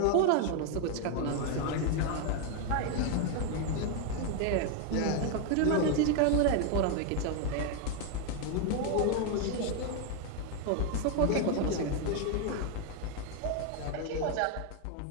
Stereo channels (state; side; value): different; both; correlation 0.01